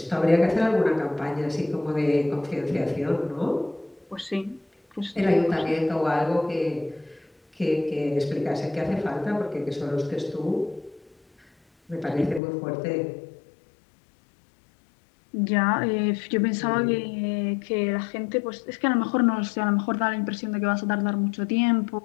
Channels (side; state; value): right; drops out; at 12.4 s